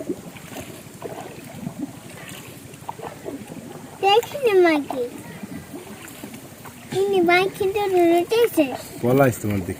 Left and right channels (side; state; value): both; identical; correlation 1.00